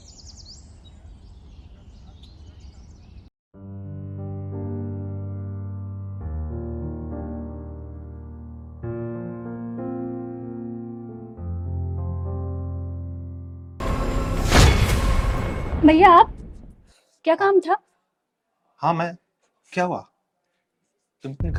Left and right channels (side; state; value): both; identical; correlation 1.00